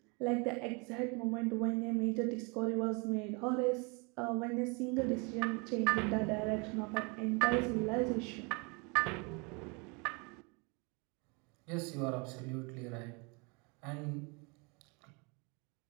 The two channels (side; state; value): left; quieter; 31.1 dB